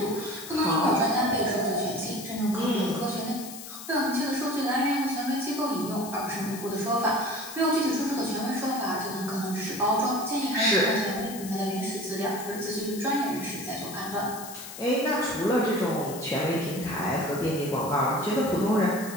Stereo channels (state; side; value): noise; left; hiss, 12 dB below the sound